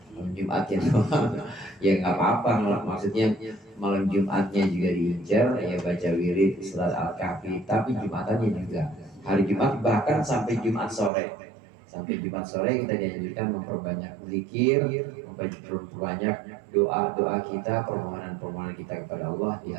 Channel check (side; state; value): left; drops out; at 11.1 s